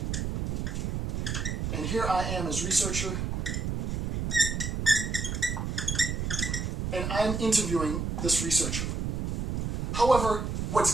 and here I am as researcher, and I'm interviewing this researcher. However,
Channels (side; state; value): right; noise; rumble, 1 dB below the sound